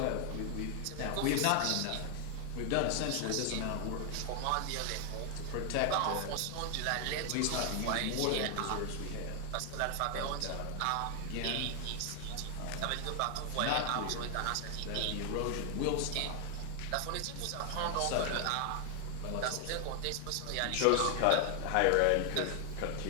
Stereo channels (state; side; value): different; both; correlation 0.00